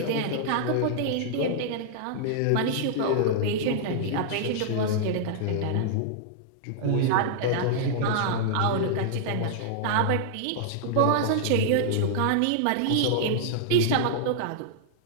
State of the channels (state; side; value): different; both; correlation -0.01